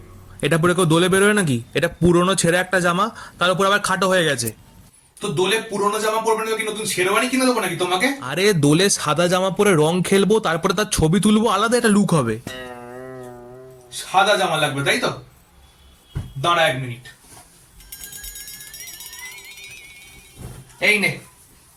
এটা পরে কেউ দোলে বেরোয় নাকি? এটা পুরনো ছেঁড়া একটা জামা, তার উপর আবার খাটো হয়ে গেছে। তো দোলে পুরোনো জামা পরবে না তো কি নতুন শেরওয়ানি কিনে দেবো নাকি তোমাকে? আরে দোলে সাদা জামা পরে রং খেলবো, তারপরে তার ছবি তুলবো, আলাদা একটা লুক হবে। সাদা জামা লাগবে তাই তো? দাঁড়া 1 মিনিট। এই নে,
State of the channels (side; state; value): both; identical; correlation 1.00